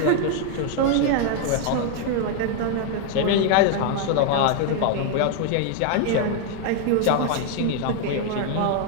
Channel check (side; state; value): both; different; correlation 0.00